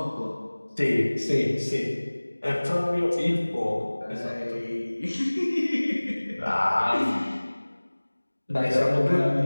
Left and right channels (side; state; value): both; inverted; correlation -1.00